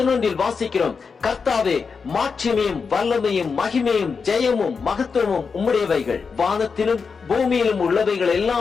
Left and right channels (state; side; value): quieter; right; 5.3 dB